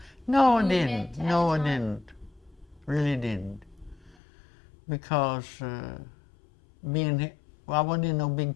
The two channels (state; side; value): drops out; right; at 4.2 s